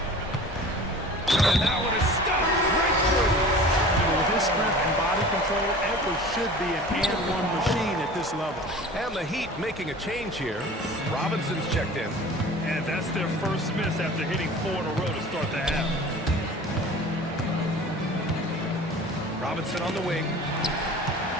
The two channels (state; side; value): normal; both; correlation 0.41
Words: And that one is stuffed right through. With his strength and body control, Edwards should be an and-one machine at this level. And the Heat making a change here. Robinson's checked in. And that's their first miss after hitting 4 in a row to start the half. Robinson on the wing.